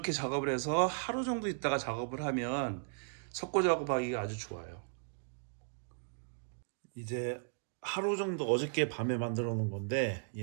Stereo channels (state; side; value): silent; left; digital silence